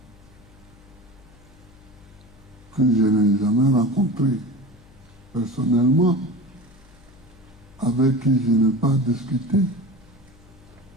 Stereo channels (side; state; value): left; noise; hum, 25 dB below the sound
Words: que je n'ai jamais rencontrée personnellement, avec qui je n'ai pas discuté,